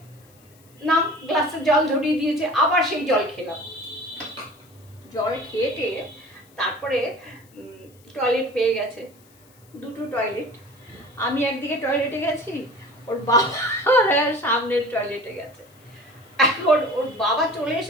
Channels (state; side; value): noise; left; hiss, 29 dB below the sound